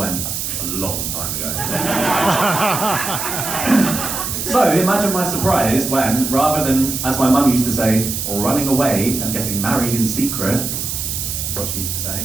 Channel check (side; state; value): right; noise; hiss, 3 dB below the sound